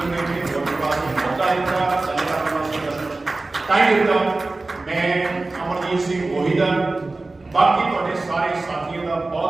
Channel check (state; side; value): quieter; left; 3.2 dB